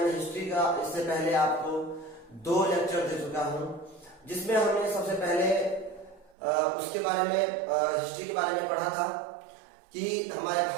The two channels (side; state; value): left; drops out; at 6.4 s